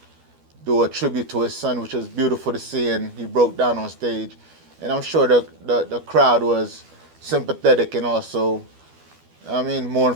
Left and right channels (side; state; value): left; late; 12 ms